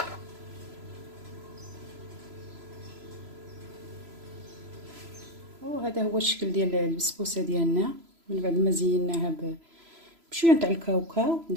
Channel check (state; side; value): late; left; 3.0 ms